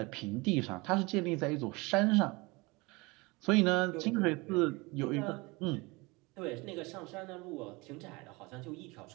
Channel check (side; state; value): left; quieter; 24.8 dB